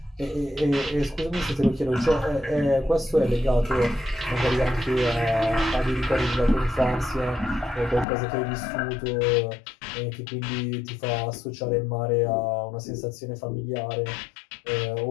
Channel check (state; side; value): drops out; right; at 8.1 s